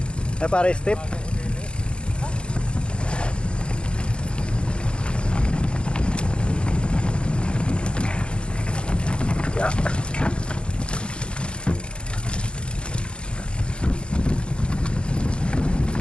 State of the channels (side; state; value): right; late; 0.055 ms